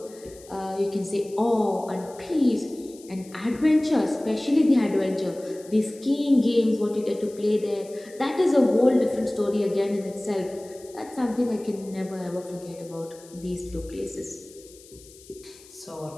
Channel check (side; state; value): left; noise; hiss, 22 dB below the sound